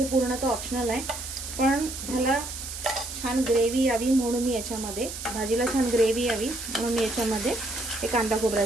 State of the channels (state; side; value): noise; right; hiss, 8 dB below the sound